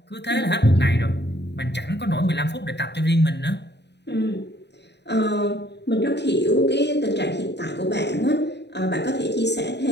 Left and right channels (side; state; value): right; late; 0.50 ms